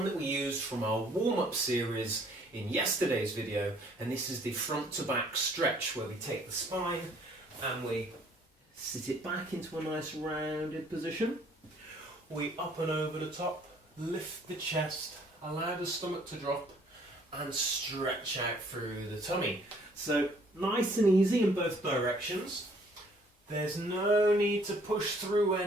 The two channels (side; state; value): both; normal; correlation 0.60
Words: that we used from our warm-up series in yesterday's video, and this is the front to back stretch, where we take the spine and we sit it back into a nice rounded position. We up and over the top, lift the chest, allow the stomach to drop and stretch out through the tummy. So nice and easy in both directions. There's no need to push through